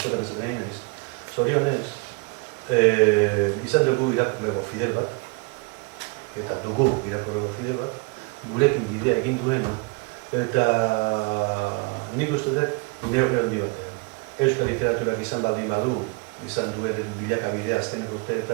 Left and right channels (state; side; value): quieter; left; 28.4 dB